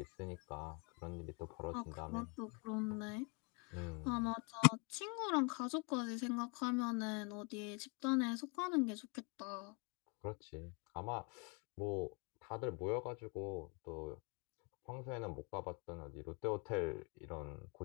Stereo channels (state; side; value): quieter; right; 33.3 dB